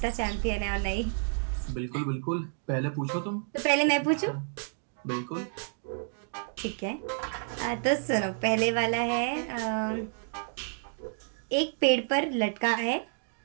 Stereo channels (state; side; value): silent; left; digital silence